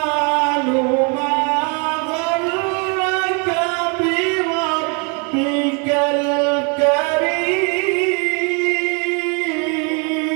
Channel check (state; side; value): quieter; left; 35.4 dB